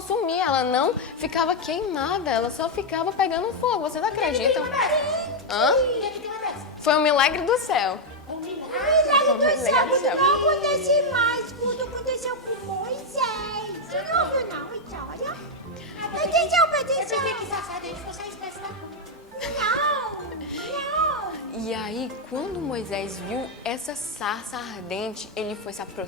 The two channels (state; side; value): normal; both; correlation 0.01